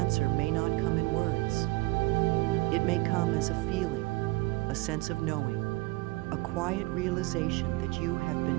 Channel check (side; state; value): left; quieter; 21.6 dB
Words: may not come in words. It may come as a feeling, a sense of knowing, a quiet realization that you have